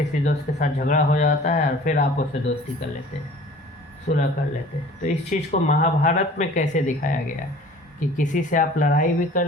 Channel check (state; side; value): normal; both; correlation 0.47